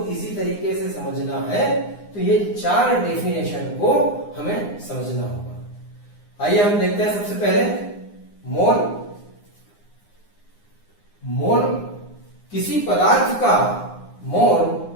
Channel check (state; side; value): late; right; 9.7 ms